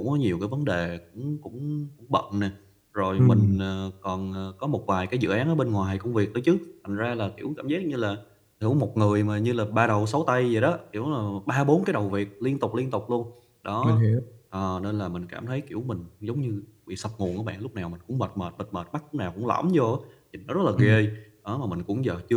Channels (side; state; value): both; identical; correlation 1.00